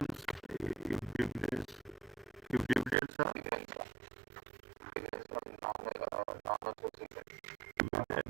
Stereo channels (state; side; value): drops out; left; at 3.0 s